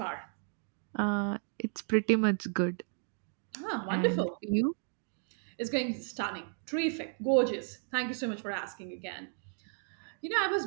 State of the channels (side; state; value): left; silent; 55 dB below the other